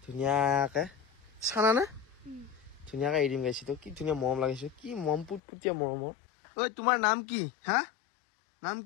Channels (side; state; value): right; drops out; at 5.4 s